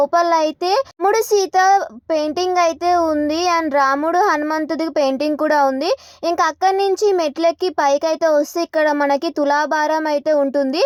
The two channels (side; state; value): both; identical; correlation 1.00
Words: అయితే రాముడు సీత పెయింటింగ్ అయితే ఉంది అండ్ రాముడు హనుమంతుడి పెయింటింగ్ కూడా ఉంది. ఇంకా అక్కడి నుంచి మెట్లెక్కి పైకి అయితే వస్తే ఇక్కడ మనకి తులాభారం అయితే ఉంటుంది.